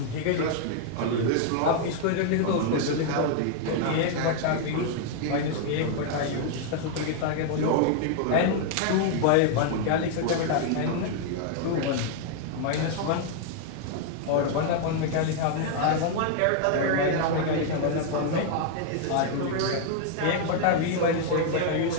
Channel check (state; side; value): different; both; correlation 0.00